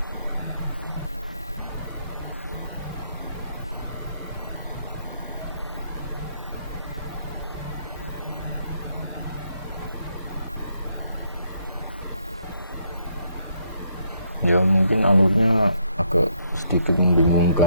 Ya, mungkin alurnya agak sedikit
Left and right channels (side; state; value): both; inverted; correlation -0.73